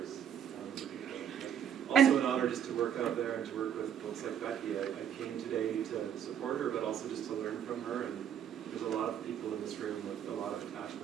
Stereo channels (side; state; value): left; quieter; 9.1 dB